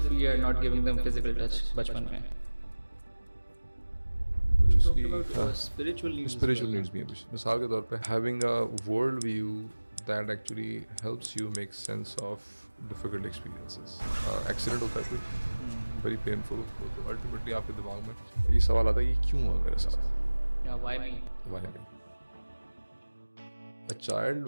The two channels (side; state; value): both; inverted; correlation -1.00